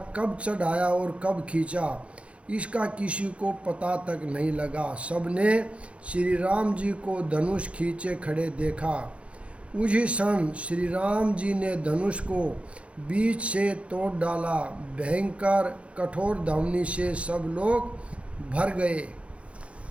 कब चढ़ाया और कब खींचा इसका किसी को पता तक नहीं लगा। सबने श्री राम जी को धनुष खींचे खड़े देखा। उसी क्षण श्री राम जी ने धनुष को बीच से तोड़ डाला। भयंकर कठोर धावनी से सब लोग भर गए।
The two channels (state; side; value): late; left; 0.061 ms